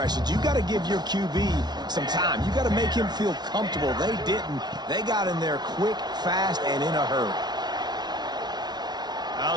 You got to give your QB some time. You got to make him feel comfortable. They didn't. They got in there quick, fast, and in a hurry.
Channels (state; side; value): late; left; 0.20 ms